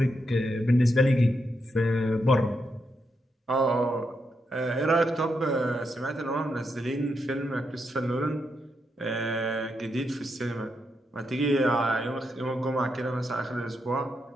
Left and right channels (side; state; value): both; normal; correlation 0.82